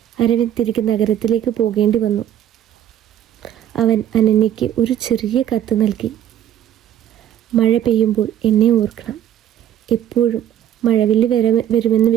തിരികെ നഗരത്തിലേക്ക് പോകേണ്ടി വന്നു. അവൻ അനന്യയ്ക്ക് ഒരു ചെറിയ കത്ത് നൽകി. മഴ പെയ്യുമ്പോൾ എന്നെ ഓർക്കണം, എപ്പോഴും മഴവില്ല് വരുമെന്ന്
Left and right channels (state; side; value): quieter; left; 10.9 dB